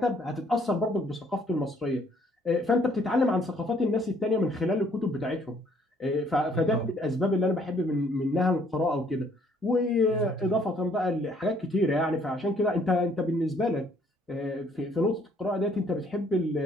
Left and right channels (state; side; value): normal; both; correlation 0.64